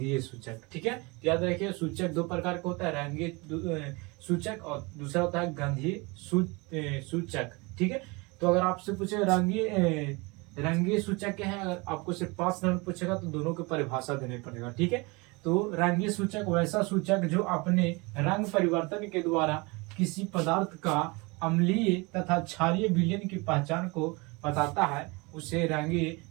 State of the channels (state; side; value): quieter; left; 26.7 dB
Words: सूचक। ठीक है, याद रखिए सूचक दो प्रकार का होता है, रंगीय सूचक और दूसरा होता है गंधीय सूचक। ठीक है, तो अगर आपसे पूछे रंगीय सूचक क्या है, अगर आपको सिर्फ 5 नंबर पूछेगा तो दोनों की परिभाषा देनी पड़ेगा। ठीक है, तो रंगीय सूचक वैसा सूचक जो अपने रंग परिवर्तन के द्वारा किसी पदार्थ का अम्लीय तथा क्षारीय विलयन की पहचान को बताता है, उसे रंगीय